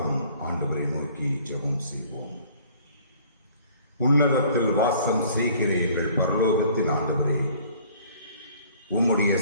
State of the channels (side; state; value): both; inverted; correlation -0.54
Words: ஆண்டவரை நோக்கி ஜெபம் செய்வோம். உன்னதத்தில் வாசம் செய்கிற எங்கள் பரலோகத்தின் ஆண்டவரே, உம்முடைய